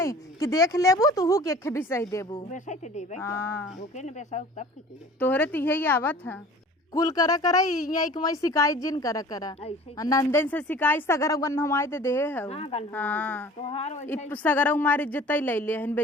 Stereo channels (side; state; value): both; normal; correlation 0.45